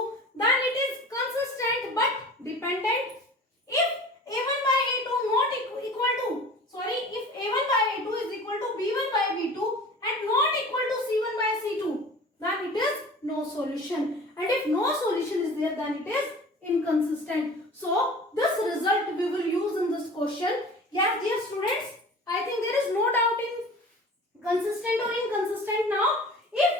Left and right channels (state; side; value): normal; both; correlation 0.41